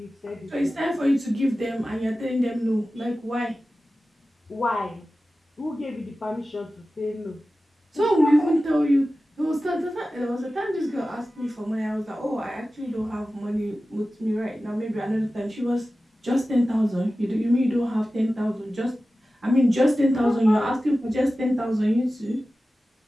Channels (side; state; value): both; normal; correlation 0.95